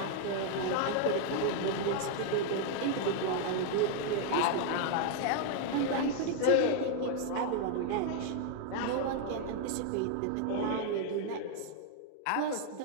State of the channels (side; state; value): both; different; correlation 0.00